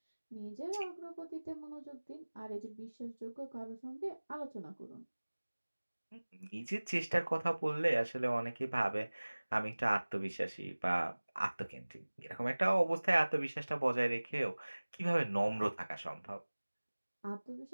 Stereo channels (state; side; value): inverted; both; correlation -1.00